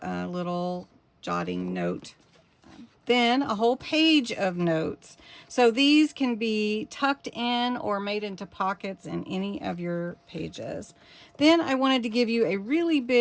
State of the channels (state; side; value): identical; both; correlation 1.00